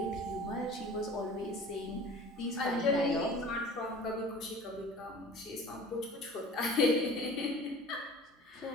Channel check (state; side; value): normal; both; correlation 0.43